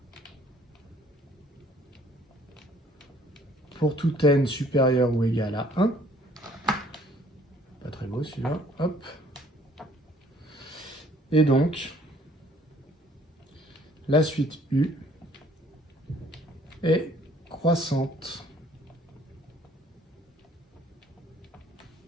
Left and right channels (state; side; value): normal; both; correlation 0.59